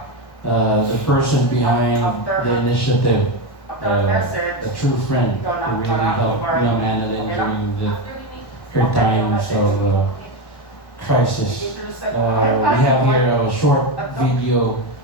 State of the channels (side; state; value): right; late; 1.1 ms